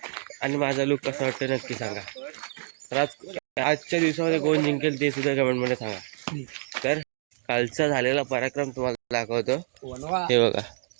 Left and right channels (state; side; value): silent; left; digital silence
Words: आणि माझा लुक कसा वाटतं नक्की सांगा. तर आजच्या दिवसामध्ये कोण जिंकेल ते सुद्धा कमेंटमध्ये सांगा. तर कालचा झालेला पराक्रम तुम्हाला दाखवतो. हे बघा,